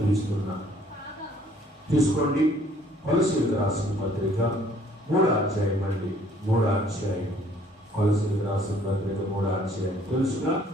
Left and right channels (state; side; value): normal; both; correlation 0.60